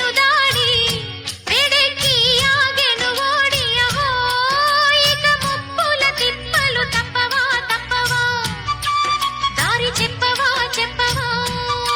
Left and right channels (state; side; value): identical; both; correlation 1.00